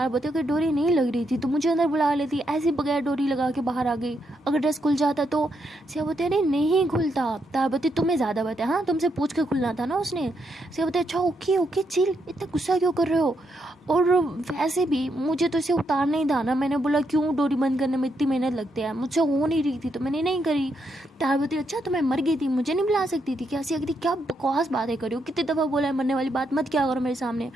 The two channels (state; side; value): normal; both; correlation 0.79